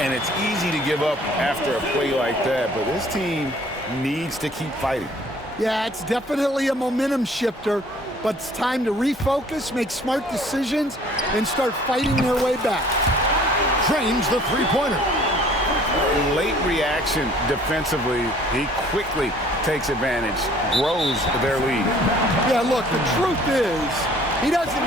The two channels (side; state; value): both; normal; correlation 0.55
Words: And it's easy to give up after a play like that, but this team needs to keep fighting. Yeah, it's definitely a momentum shifter, but it's time to refocus, make smart decisions, and start fighting their way back. Drains the three-pointer. Late reaction defensively. He quickly takes advantage, grows their lead. Yeah, look, the truth is, he